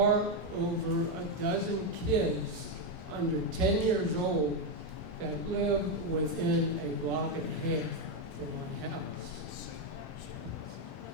over a dozen kids under 10 years old that live within a block and a half from my house.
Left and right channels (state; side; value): normal; both; correlation 0.05